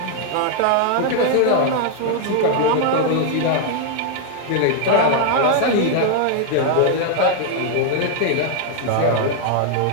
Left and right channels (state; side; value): different; both; correlation 0.00